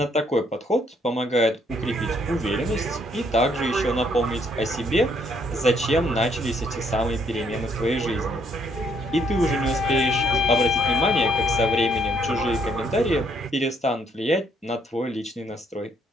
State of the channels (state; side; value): normal; both; correlation 0.69